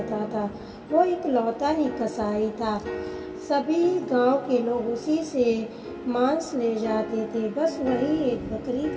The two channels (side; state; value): both; identical; correlation 1.00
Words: था। वो एक लौता ही कसाई था। सभी गांव के लोग उसी से मांस ले जाते थे। बस वही एक बकरी